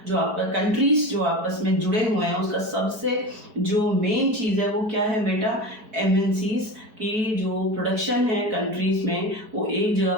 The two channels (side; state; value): left; late; 4.6 ms